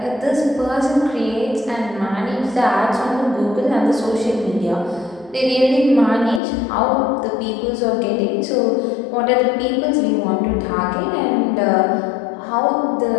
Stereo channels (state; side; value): drops out; right; at 6.4 s